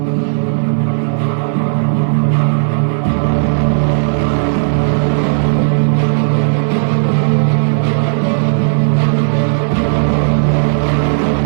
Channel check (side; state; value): left; silent; digital silence